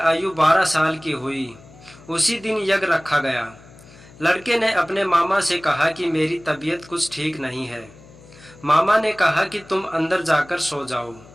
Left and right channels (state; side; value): noise; left; hum, 23 dB below the sound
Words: 12 साल की हुई उसी दिन यज्ञ रखा गया। लड़के ने अपने मामा से कहा कि मेरी तबीयत कुछ ठीक नहीं है। मामा ने कहा कि तुम अंदर जाकर सो जाओ।